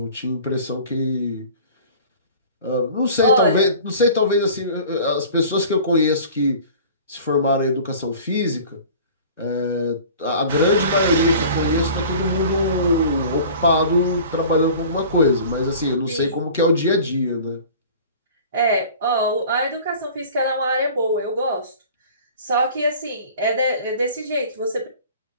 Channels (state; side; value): inverted; both; correlation -0.43